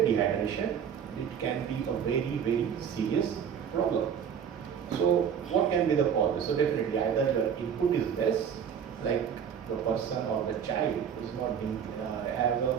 dehydration, it can be a very serious problem. So what can be the cause? So definitely either your input is less, like the person or the child is not has a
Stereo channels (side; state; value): left; quieter; 8.0 dB